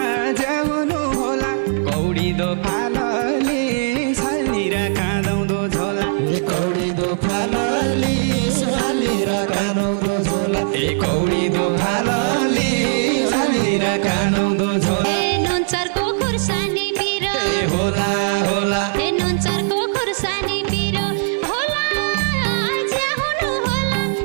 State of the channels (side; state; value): left; silent; digital silence